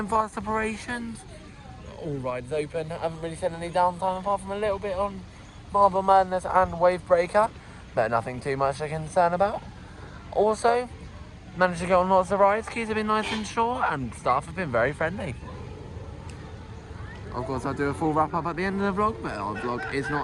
fast operations. All rides open. Haven't really seen any downtime apart from a little bit on Marble Madness and Wave Breaker, but nothing too much to concern about. Also, managed to go on lots of rides. Queues have been nice and short and staff have been very friendly. Of course, I'll do a full wrap up at the end of the vlog, but our vlog is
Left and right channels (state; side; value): identical; both; correlation 1.00